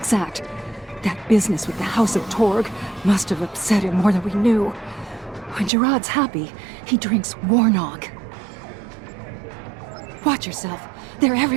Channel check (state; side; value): drops out; left; at 5.7 s